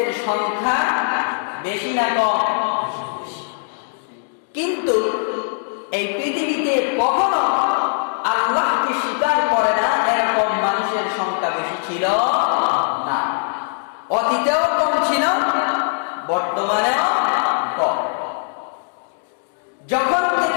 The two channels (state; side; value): silent; right; digital silence